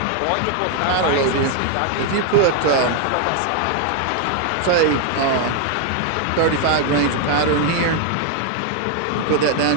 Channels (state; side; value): different; both; correlation 0.00